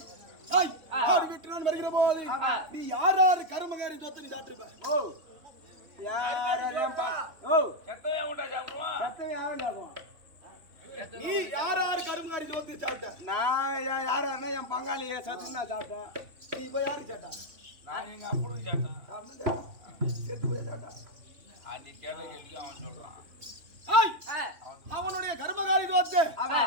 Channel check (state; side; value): late; left; 3.2 ms